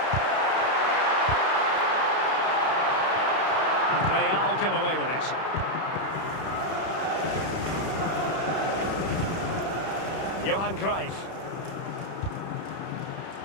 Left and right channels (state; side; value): late; right; 31 ms